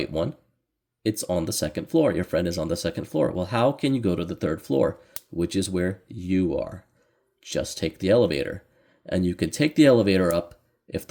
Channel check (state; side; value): identical; both; correlation 1.00